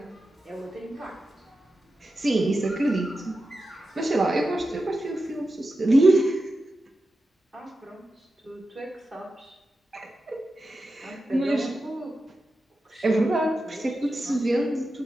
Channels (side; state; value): both; normal; correlation 0.91